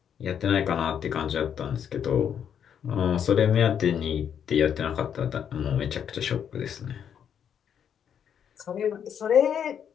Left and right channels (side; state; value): right; quieter; 8.4 dB